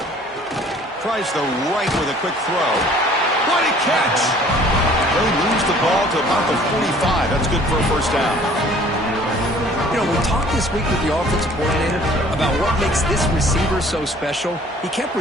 Tries the right with a quick throw. What a catch! They lose the ball to about the 45. That's good for a first down. You know, we talked this week with the offensive coordinator about what makes this receiver so special. He kept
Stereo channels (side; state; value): both; normal; correlation 0.53